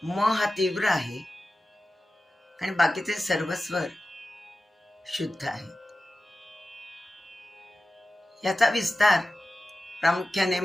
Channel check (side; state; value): both; normal; correlation 0.95